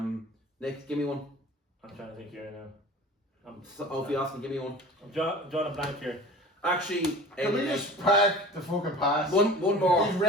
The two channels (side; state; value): both; normal; correlation 0.39